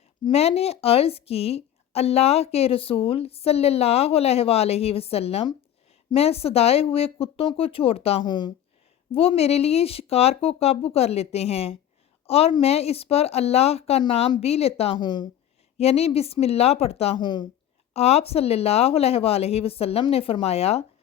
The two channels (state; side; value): quieter; right; 10.8 dB